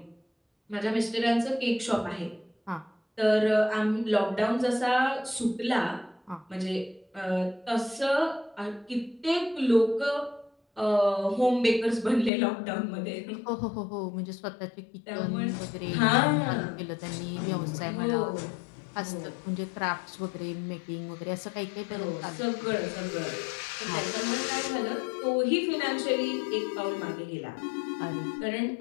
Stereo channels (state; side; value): drops out; right; at 12.3 s